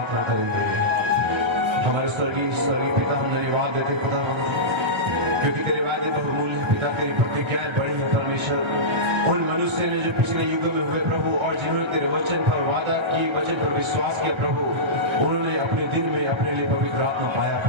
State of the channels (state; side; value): late; left; 1.3 ms